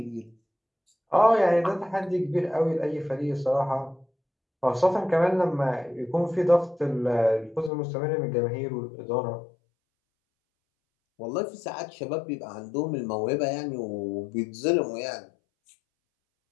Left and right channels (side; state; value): right; drops out; at 7.7 s